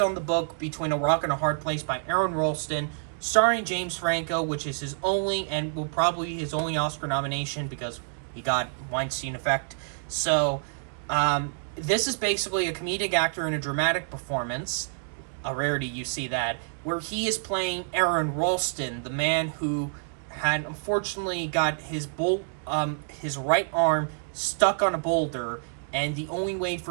on the book Between a Rock and a Hard Place by Aaron Ralston, starring James Franco, which is his only, and will probably be his only Oscar nomination because he got Weinstein effect. So, this is basically a comedic actor in a dramatic performance, a rarity you see that, where he is playing Aaron Ralston, the man who had unfortunately got his right arm stuck on a boulder, and the only way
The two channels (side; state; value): left; silent; digital silence